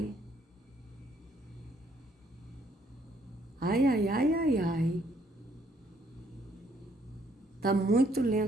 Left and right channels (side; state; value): both; normal; correlation 0.67